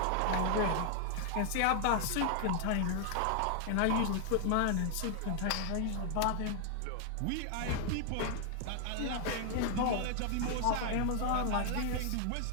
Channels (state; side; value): different; both; correlation 0.00